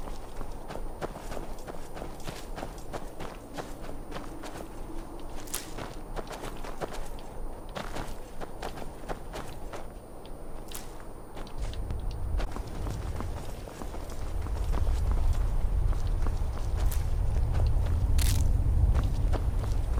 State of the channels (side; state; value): both; identical; correlation 1.00